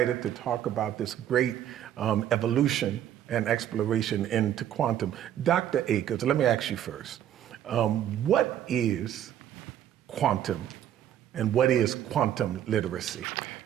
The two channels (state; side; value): quieter; left; 10.9 dB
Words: to talk about this great evolution and exploration into quantum. Dr. Akers, let me ask you first. What is quantum, and what is quantum literacy?